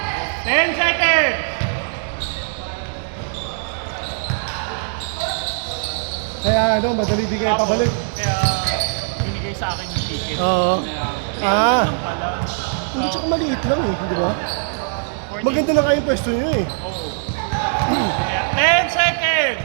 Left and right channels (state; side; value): silent; left; digital silence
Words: 10 seconds! Kaya ano, madali di kayo pabalik. Kaya binigay sa akin yung ticket. Oo. Kaya, Ah. pala. Hindi, tsaka maliit lang eh, di ba? 40 Maganda na kayo yung pwesto nyo eh. Oo. Kaya, 10 seconds!